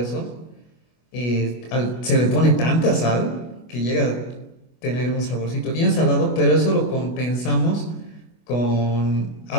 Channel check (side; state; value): right; late; 25 ms